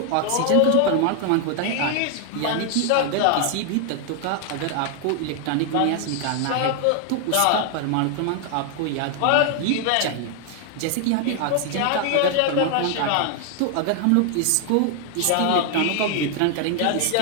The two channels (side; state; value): both; different; correlation 0.00